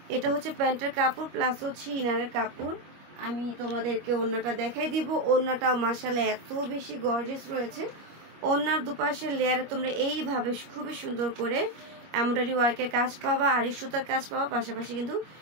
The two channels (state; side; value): late; left; 25 ms